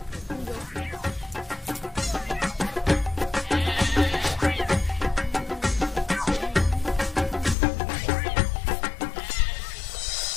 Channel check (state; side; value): drops out; right; at 7.6 s